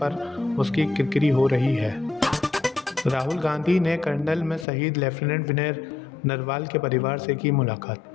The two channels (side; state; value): right; drops out; at 4.7 s